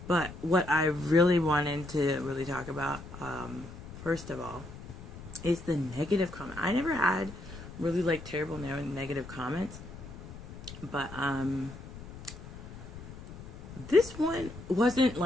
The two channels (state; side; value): noise; left; rumble, 14 dB below the sound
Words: But what I really wanted to really talk about first of all is the negative comment. I never had really terrible negative comments, but this one wasn't